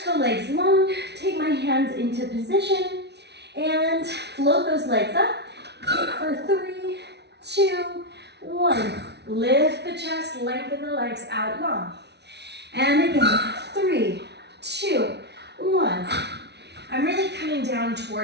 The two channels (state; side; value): late; left; 0.50 ms